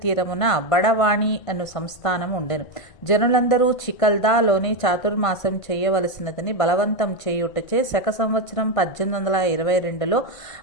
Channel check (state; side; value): late; right; 1.5 ms